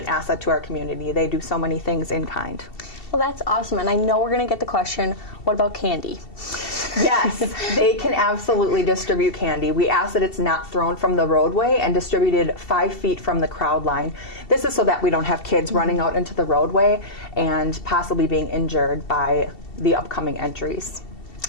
asset to our community. They do so many things in kind. Well, that's awesome, and I know we're going to get the question, what about candy? Yes, they can absolutely distribute candy. We ask that it's not thrown from the roadway and distributed 5 feet from the crowd line. This is so that we don't have kids running out into the roadway and possibly being injured by the upcoming entries.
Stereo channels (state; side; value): late; right; 2.7 ms